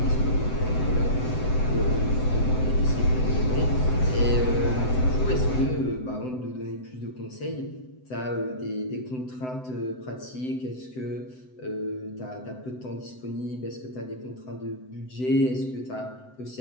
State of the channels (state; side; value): late; right; 7.9 ms